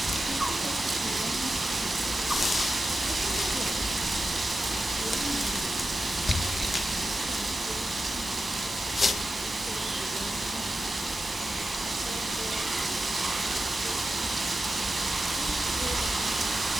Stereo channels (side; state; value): both; normal; correlation 0.91